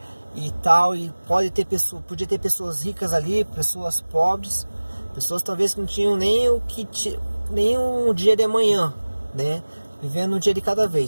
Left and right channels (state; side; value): inverted; both; correlation -1.00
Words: e tal, e podia ter pessoas ricas ali, pessoas pobres, pessoas talvez que não tinham nem um dia de amanhã, né? Vivendo um dia de cada